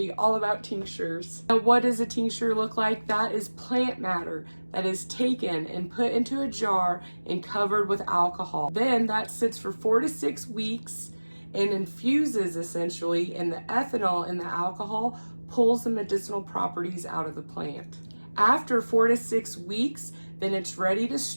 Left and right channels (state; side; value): inverted; both; correlation -1.00